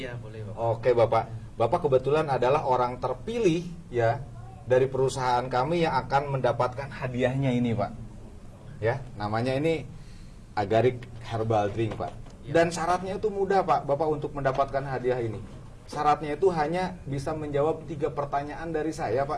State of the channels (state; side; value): identical; both; correlation 1.00